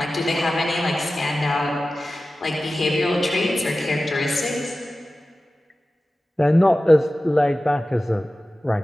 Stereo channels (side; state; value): both; normal; correlation 0.95